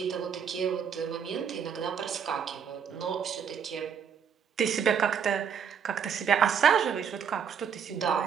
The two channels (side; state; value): left; quieter; 7.4 dB